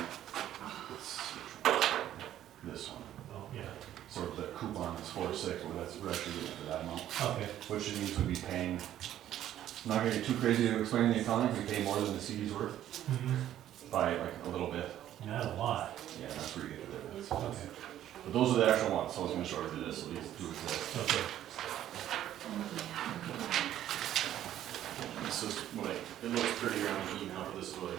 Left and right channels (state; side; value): quieter; left; 11.9 dB